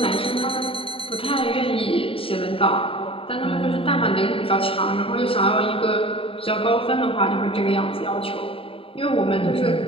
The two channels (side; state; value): right; late; 0.27 ms